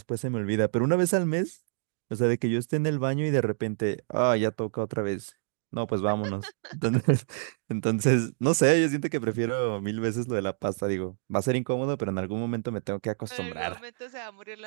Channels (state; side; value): silent; left; digital silence